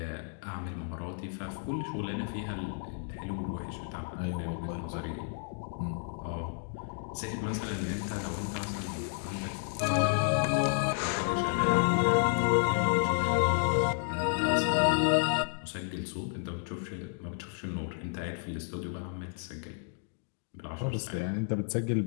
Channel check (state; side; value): silent; right; 57 dB below the other